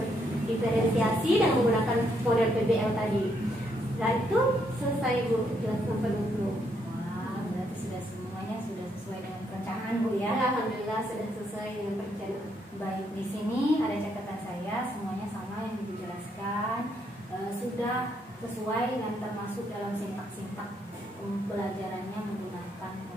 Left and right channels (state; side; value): normal; both; correlation 0.75